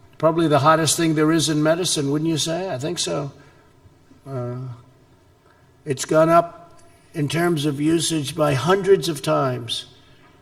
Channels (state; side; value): identical; both; correlation 1.00